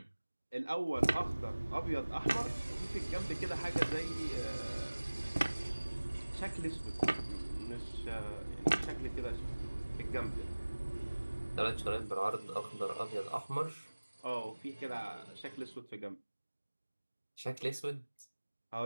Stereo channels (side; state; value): both; inverted; correlation -1.00